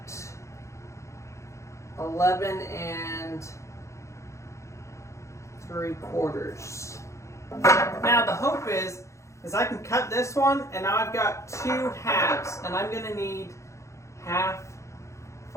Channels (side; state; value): right; late; 0.14 ms